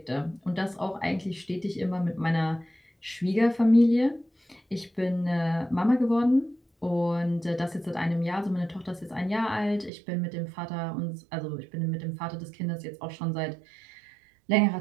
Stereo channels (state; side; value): drops out; left; at 9.9 s